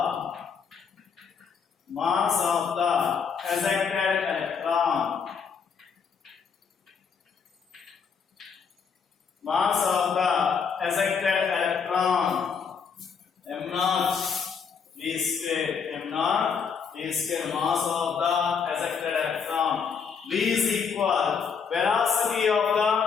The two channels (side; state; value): right; quieter; 6.2 dB